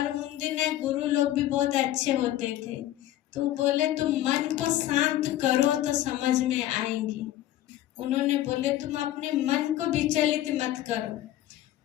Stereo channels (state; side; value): quieter; right; 13.7 dB